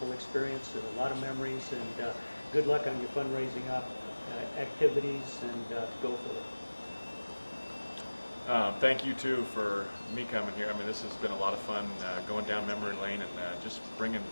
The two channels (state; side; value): inverted; both; correlation -1.00